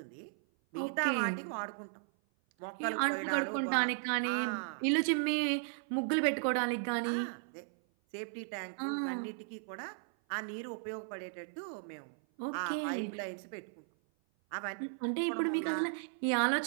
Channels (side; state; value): left; silent; 54 dB below the other